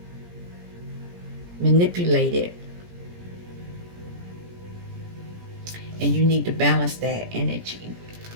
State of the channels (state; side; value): late; left; 17 ms